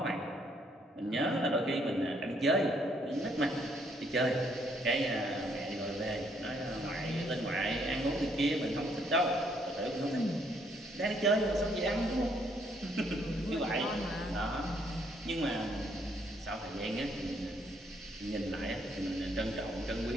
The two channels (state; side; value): normal; both; correlation 0.69